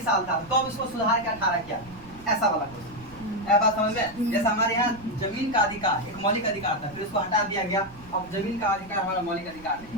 साल था तो अब इसको सुधार के 18 किया, ऐसा वाला क्वेश्चन। ऐसा बात समझ में, जैसे हमारे यहाँ जमीन का अधिकार एक मौलिक अधिकार था, फिर उसको हटा दिया गया, अब जमीन का अधिकार हमारा मौलिक अधिकार नहीं,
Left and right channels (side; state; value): right; noise; rumble, 19 dB below the sound